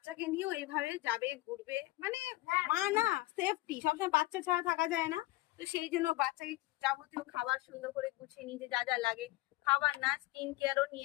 নিয়েও এইভাবে যাবে, ঘুরবে, মানে মা না, সেফটি সবসময় বাচ্চা ছাড়া থাকা যায় না। তো সেই জন্য বাচ্চাকে যাবতীয় খাবার সুন্দর করে গুছিয়ে নিতে যা যা লাগে, খাবার না স্কিন কেয়ারও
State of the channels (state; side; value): quieter; right; 18.5 dB